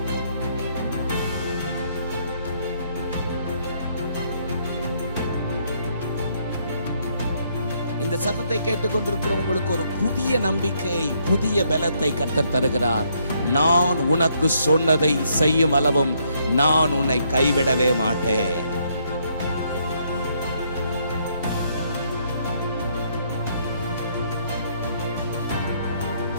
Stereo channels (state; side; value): inverted; both; correlation -0.71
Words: இந்த சத்தத்தை கேட்டுக்கொண்டிருக்கிற உங்களுக்கு ஒரு புதிய நம்பிக்கை, புதிய பலத்தை கர்த்தர் தருகிறார். நான் உனக்கு சொன்னதை செய்யும் அளவும் நான் உன்னை கைவிடவே மாட்டேன்.